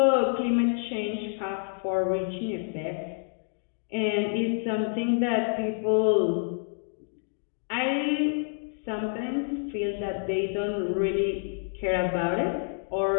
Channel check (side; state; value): right; silent; digital silence